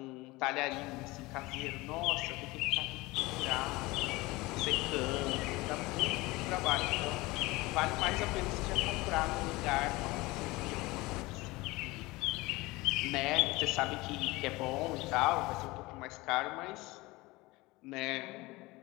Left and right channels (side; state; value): right; quieter; 21.7 dB